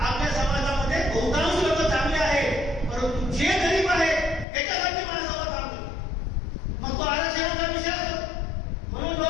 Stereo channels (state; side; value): drops out; right; at 4.5 s